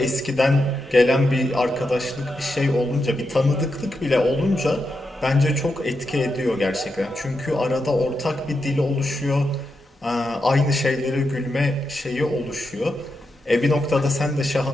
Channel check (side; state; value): both; normal; correlation 0.86